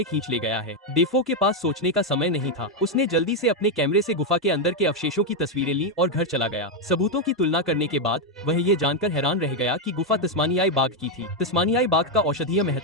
खींच ले गया है। डेफो के पास सोचने का समय नहीं था। उसने जल्दी से अपने कैमरे से गुफा के अंदर के अवशेषों की तस्वीरें ली और घर चला गया। सबूतों की तुलना करने के बाद वह ये जानकर हैरान रह गया कि गुफा तस्मानियाई बाघ की थी। तस्मानियाई बाघ का औषधीय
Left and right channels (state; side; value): normal; both; correlation 0.03